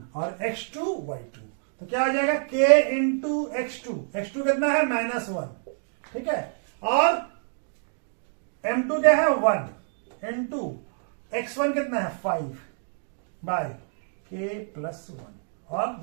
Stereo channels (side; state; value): left; silent; 60 dB below the other